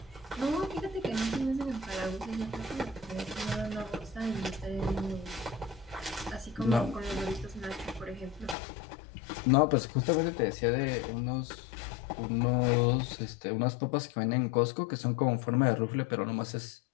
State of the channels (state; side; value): drops out; right; at 8.6 s